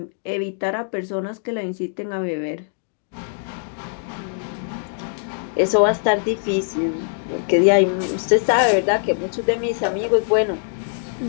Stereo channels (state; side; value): silent; right; digital silence